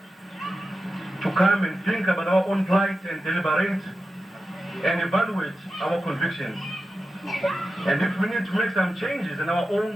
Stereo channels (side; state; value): both; normal; correlation 0.92